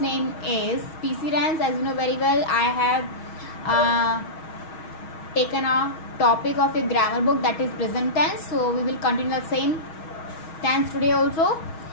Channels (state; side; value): late; right; 6.3 ms